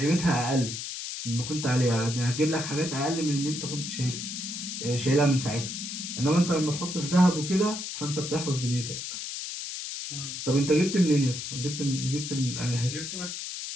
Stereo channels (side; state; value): left; noise; hiss, 6 dB below the sound